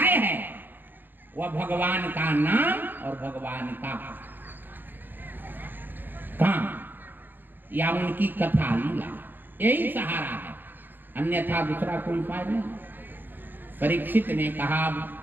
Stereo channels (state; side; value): late; left; 0.090 ms